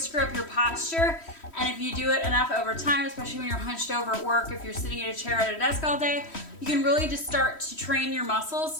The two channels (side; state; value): right; late; 3.1 ms